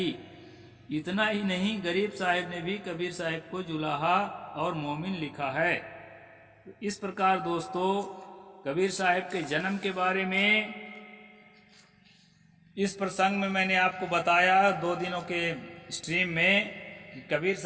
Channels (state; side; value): identical; both; correlation 1.00